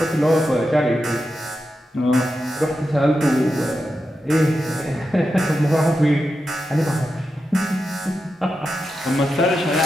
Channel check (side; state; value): both; normal; correlation 0.89